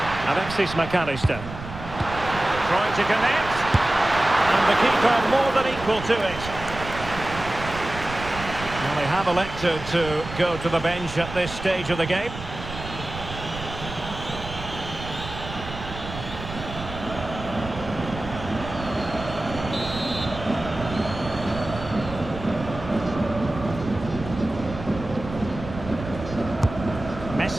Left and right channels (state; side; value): noise; right; rumble, 11 dB below the sound